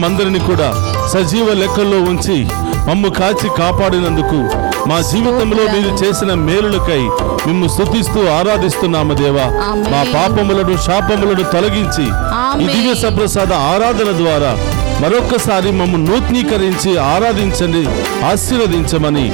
కూడా సజీవ లెక్కల్లో ఉంచి మమ్ము కాచి కాపాడినందుకు, మా జీవితంలో మీరు చేసిన మేలులకై మిమ్ము స్తుతిస్తూ ఆరాధిస్తున్నాము దేవా. మా పాపములను శాపములను తొలగించి ఈ దివ్య సప్రసాద ఆరాధన ద్వారా మరొక్కసారి మమ్ము నూతనీకరించి ఆరాధించండి, ఆశీర్వదించమని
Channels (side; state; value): left; quieter; 23.6 dB